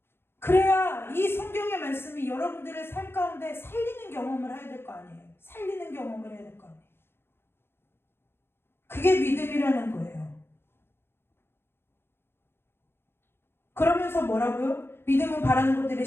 그래야 이 성경의 말씀이 여러분들의 삶 가운데 살리는 경험을 해야 될 거 아니에요. 살리는 경험을 해야 될 거 아니에요. 그게 믿음이라는 거예요. 그러면서 뭐라고요? 믿음은 바라는 것들의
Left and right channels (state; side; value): late; right; 0.11 ms